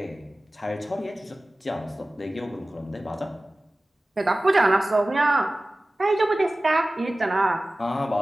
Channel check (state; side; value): normal; both; correlation 0.97